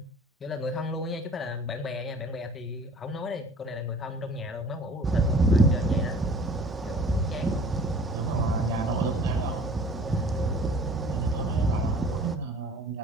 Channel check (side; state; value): both; normal; correlation 0.48